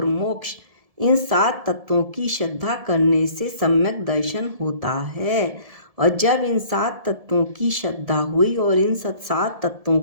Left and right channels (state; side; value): late; left; 1.7 ms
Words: मोक्ष, इन 7 तत्वों की श्रद्धा करने से सम्यक दर्शन होता है। और जब इन 7 तत्वों की श्रद्धा हुई और इन 7 तत्वों